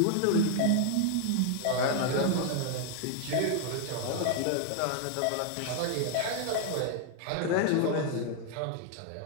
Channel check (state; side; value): different; both; correlation 0.00